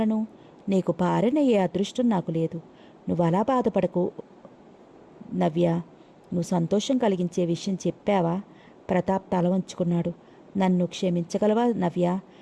నీకు భార్యనయ్యే అదృష్టం నాకు లేదు. నువ్వు అలా బాధపడకు నవ్య. నువ్వు సంతోషం కలిగించే విషయం చెప్పావా? ప్రతాప్ తల వంచుకున్నాడు. నన్ను క్షమించగలవా నవ్య?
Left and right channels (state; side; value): identical; both; correlation 1.00